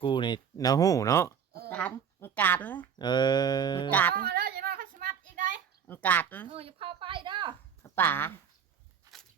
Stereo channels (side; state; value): left; quieter; 7.6 dB